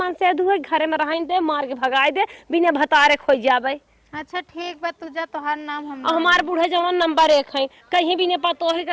से अधू है, घरे में रहाई दे, मार के भगाई दे, बिना भतारे खोई जाबे। अच्छा ठीक बा, तुझा तोहार नाम हम हमार बूढ़े जवान नंबर 1 है, कहीं भी नहीं पतो है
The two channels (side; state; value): both; identical; correlation 1.00